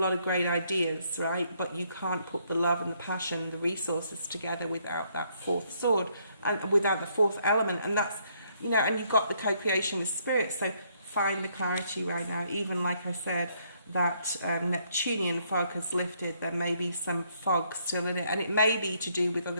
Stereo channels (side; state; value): both; inverted; correlation -0.70